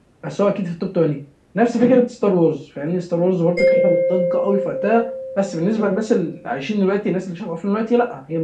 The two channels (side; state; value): both; identical; correlation 1.00